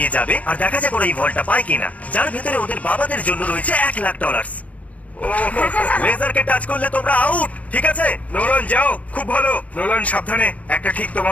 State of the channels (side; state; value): right; late; 0.068 ms